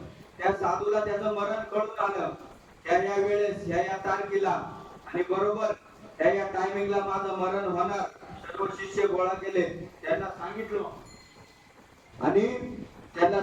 त्या साधूला त्याचं मरण कळून आलं. त्या वेळेस या तारखेला आणि बरोबर त्या टायमिंगला माझं मरण होणार. सर्व शिष्य गोळा केले. त्यांना सांगितलं आणि त्यांना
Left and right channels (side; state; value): both; identical; correlation 1.00